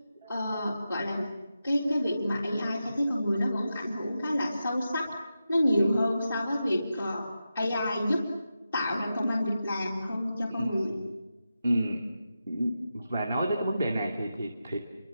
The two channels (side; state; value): both; inverted; correlation -0.90